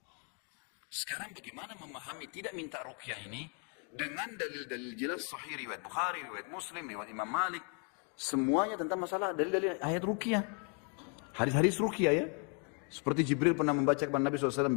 Sekarang bagaimana memahami tidak minta ruqyah ini? Dengan dalil-dalil jelas sahih riwayat Bukhari, riwayat Muslim, riwayat Imam Malik. Semuanya tentang masalah dalil-dalil ayat ruqyah. Hadis-hadis ruqyah ya. Seperti Jibril pernah membaca kepada Nabi SAW,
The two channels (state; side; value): quieter; right; 39.1 dB